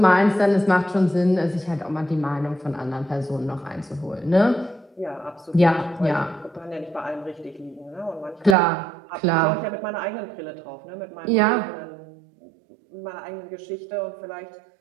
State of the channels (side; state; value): left; drops out; at 8.6 s